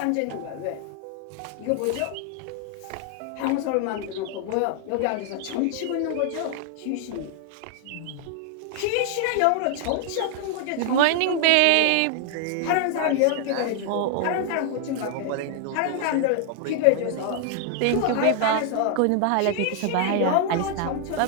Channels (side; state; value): both; different; correlation 0.00